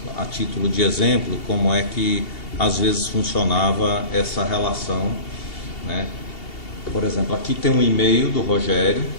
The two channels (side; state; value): right; late; 2.7 ms